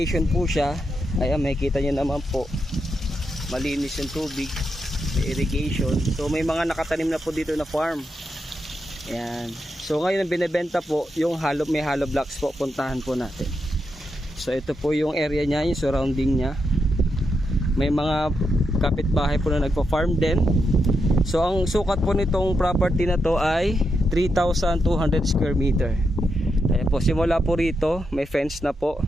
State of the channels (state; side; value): normal; both; correlation 0.84